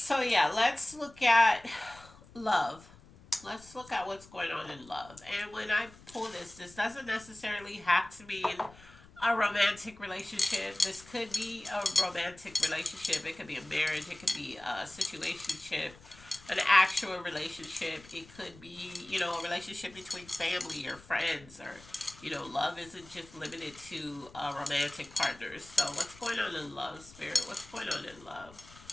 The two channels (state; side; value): noise; left; rumble, 22 dB below the sound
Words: yeah, let's look at love. Let's look at what's going on in love. And when I pull this doesn't necessarily have to mean a romantic relationship. This could be a romantic relationship. It could be a marriage. It could be a situationship, an actual relationship. It could be, a relationship between family or friends, or, love isn't just limited to romantic partners. So what's going on in love, Spirit? What's going on in love?